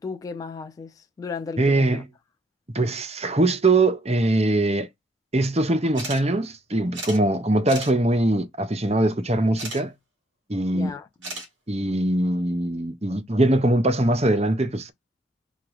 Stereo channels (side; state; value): both; normal; correlation 0.68